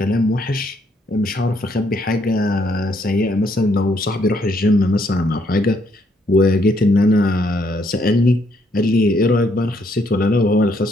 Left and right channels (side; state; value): both; normal; correlation 0.71